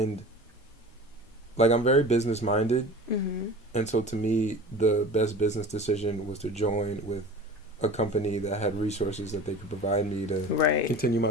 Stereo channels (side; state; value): both; normal; correlation 0.37